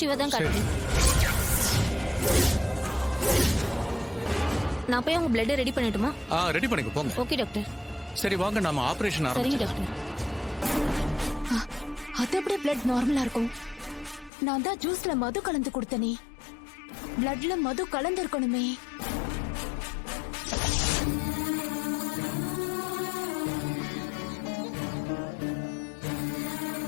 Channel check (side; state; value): right; drops out; at 14.3 s